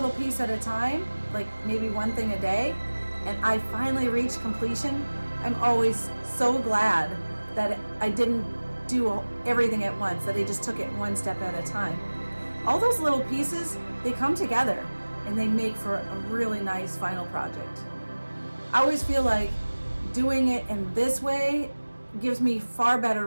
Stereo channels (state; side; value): inverted; both; correlation -1.00